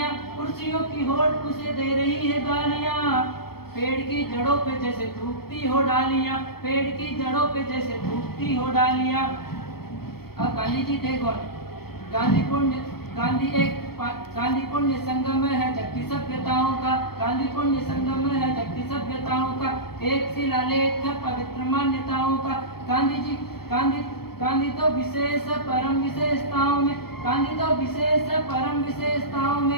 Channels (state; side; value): late; right; 0.95 ms